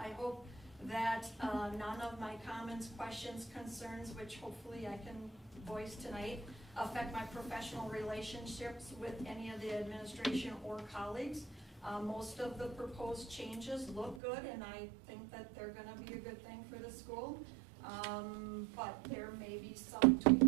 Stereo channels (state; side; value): drops out; left; at 14.2 s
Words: hope that none of my comments, questions, concerns, which hopefully I can voice tonight, affect my professional relationships with any of the administration or colleagues. Most of the proposed changes look good, and I think that they're going to be a good thing for the school. But there may be some